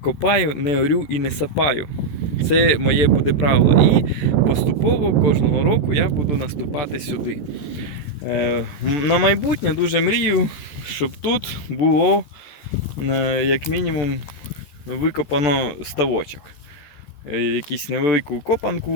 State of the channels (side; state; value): right; late; 14 ms